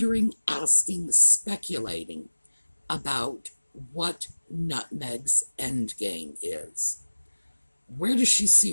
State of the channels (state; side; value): inverted; both; correlation -1.00